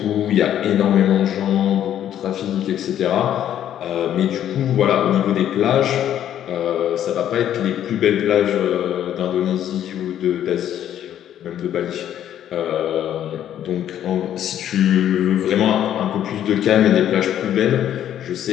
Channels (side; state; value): right; quieter; 10.8 dB